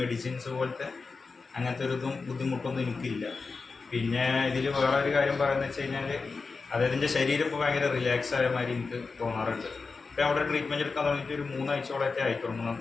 മെഡിസിൻസ് പോലത്തെ അങ്ങനത്തെ ഒരു ബുദ്ധിമുട്ടൊന്നും എനിക്കില്ല. പിന്നെ ഇതിൽ വേറെ ഒരു കാര്യം പറയുന്നത് വെച്ച് കഴിഞ്ഞാൽ, അതായത് എൻ്റെ ശരീരം ഇപ്പോൾ ഭയങ്കര റിലാക്സ് ആയ മാതിരി എനിക്ക് തോന്നാറുണ്ട്. ഇപ്പോൾ അവിടെ ട്രീറ്റ്മെൻറ്റ് എടുക്കാൻ തുടങ്ങിയിട്ട് ഒരു 3 ആഴ്ചയോളമൊക്കെ ആയിക്കോളും,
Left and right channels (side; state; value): right; quieter; 4.4 dB